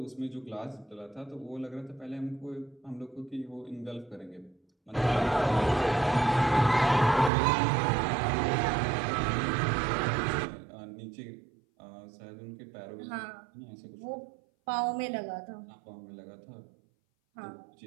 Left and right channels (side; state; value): left; drops out; at 7.3 s